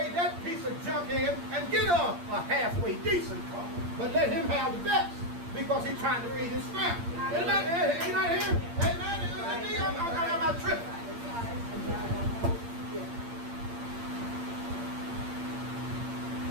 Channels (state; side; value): late; left; 8.6 ms